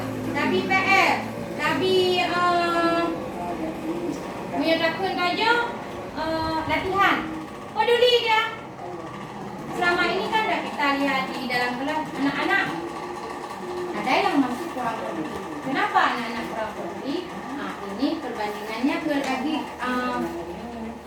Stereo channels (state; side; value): identical; both; correlation 1.00